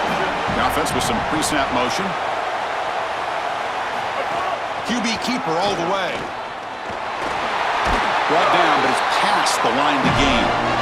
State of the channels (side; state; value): both; identical; correlation 1.00